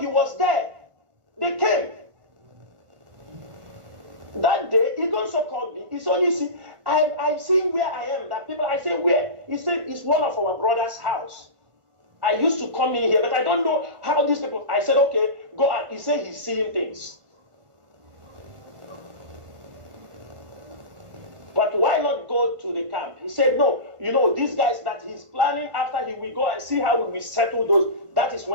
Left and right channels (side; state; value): left; late; 1.5 ms